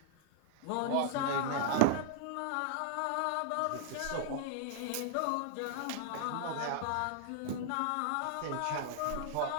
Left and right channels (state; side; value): different; both; correlation -0.01